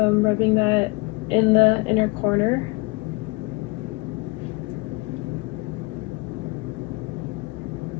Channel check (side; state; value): right; quieter; 25.8 dB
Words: rubbing that in the inner corner.